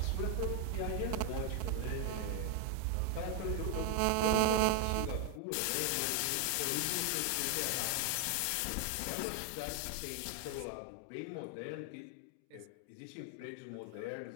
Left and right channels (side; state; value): both; different; correlation 0.00